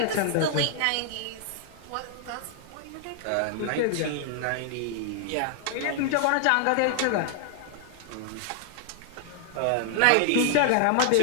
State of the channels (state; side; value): different; both; correlation 0.00